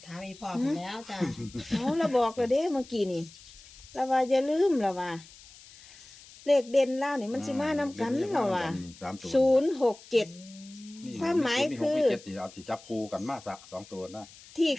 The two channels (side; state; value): left; noise; hiss, 21 dB below the sound